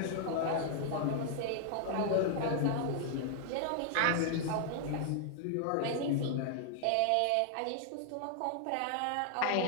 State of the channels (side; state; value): both; different; correlation 0.00